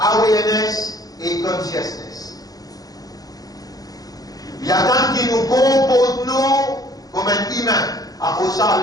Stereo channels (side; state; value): right; late; 0.18 ms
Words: et consciousness. Il y a tant qui nous comporte nous comme un humain. Après ça,